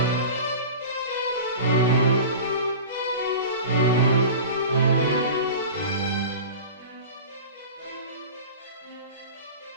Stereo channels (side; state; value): both; inverted; correlation -0.34